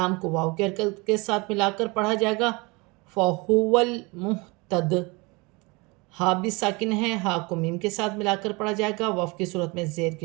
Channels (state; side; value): quieter; left; 26.5 dB